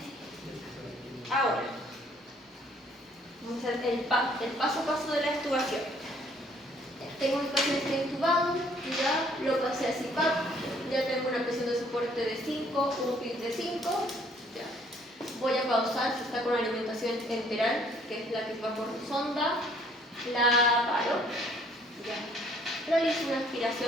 Ahora, vamos a hacer el paso a paso de la extubación. Tengo mi paciente intubado, ya lo pasé a CPAP, ya tengo una presión de soporte de 5, un PIB de 5. Ya. Voy a pausar si está con alimentación enteral, que es la que va por sonda, la paro. Ya. Realizo una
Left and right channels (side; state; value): both; normal; correlation 0.62